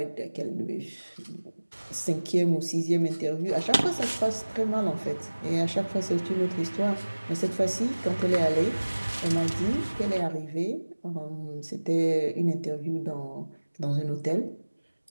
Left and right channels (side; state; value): both; inverted; correlation -1.00